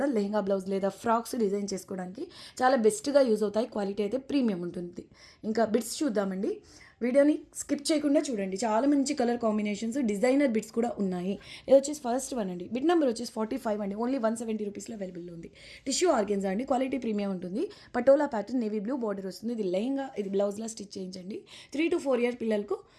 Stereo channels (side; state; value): both; identical; correlation 1.00